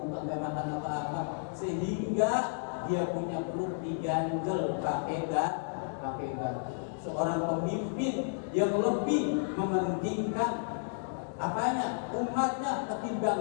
gak makan apa-apa, sehingga dia punya perut diganjel pakai seorang pemimpin yang lebih mementingkan apanya? Umatnya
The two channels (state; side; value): silent; right; digital silence